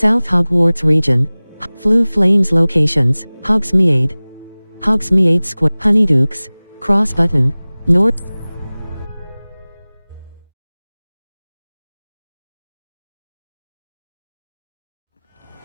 Hogwarts region. Flue Flames locations, Hogsmeade. Hogsmeade Square, Honeydukes, Cross Button, North.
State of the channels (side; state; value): both; inverted; correlation -1.00